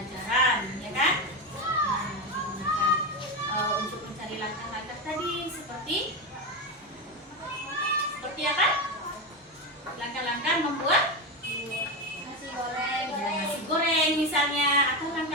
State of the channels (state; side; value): normal; both; correlation 0.15